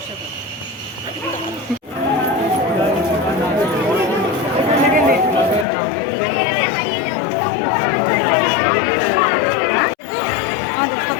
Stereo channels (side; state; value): right; drops out; at 5.7 s